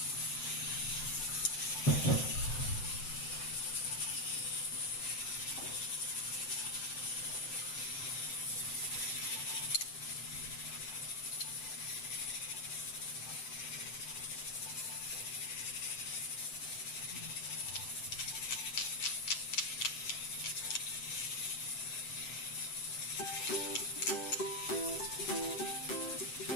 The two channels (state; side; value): late; right; 7.7 ms